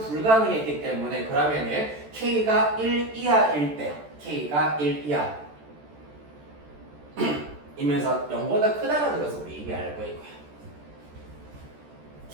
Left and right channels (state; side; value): late; left; 14 ms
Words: 때문에 그러면은 K가 1 이하일 때 K가 1 이하 이면서 0보다 크다라는 것을 우리 이미 알고 있고요.